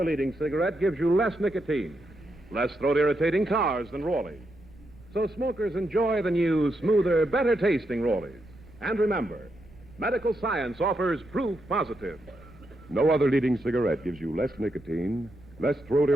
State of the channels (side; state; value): right; noise; rumble, 23 dB below the sound